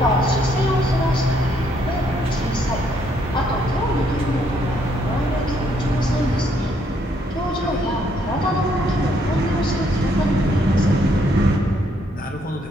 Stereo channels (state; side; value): normal; both; correlation 0.71